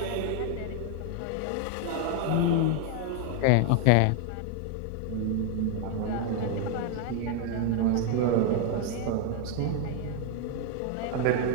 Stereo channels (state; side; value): different; both; correlation 0.00